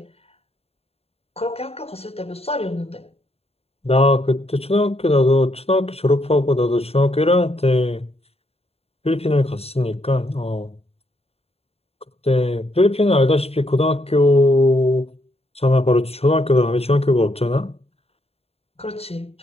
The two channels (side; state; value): right; late; 0.29 ms